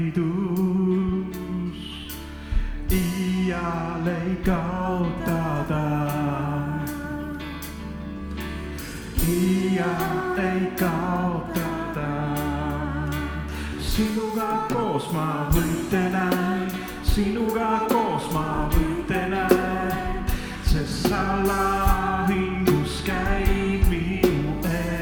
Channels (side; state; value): both; identical; correlation 1.00